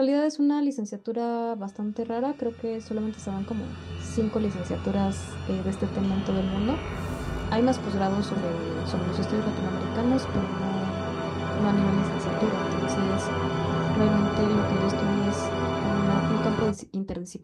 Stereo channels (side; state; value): both; identical; correlation 1.00